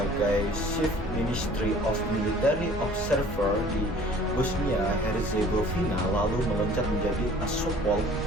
Chief Ministry of Military Observer di Bosnia Herzegovina, lalu meloncat menjadi Kasopol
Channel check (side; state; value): both; normal; correlation 0.50